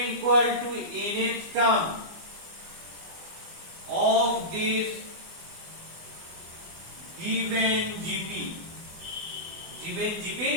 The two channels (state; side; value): late; left; 24 ms